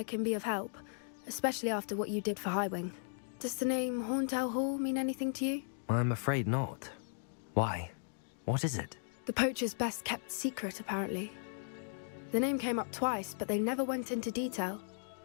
can be of help, especially after what you did for Highwing. Does the name Hauntel Hall mean anything to you? I'm afraid not. Why? What is it? The poachers' best kept secret, apparently. The name came up twice, but they never went into detail.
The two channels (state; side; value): silent; right; digital silence